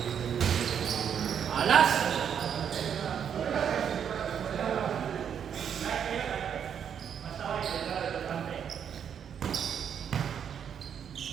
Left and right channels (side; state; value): left; quieter; 8.2 dB